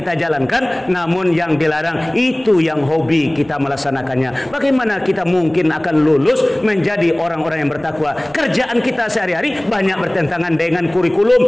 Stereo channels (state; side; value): noise; right; rumble, 26 dB below the sound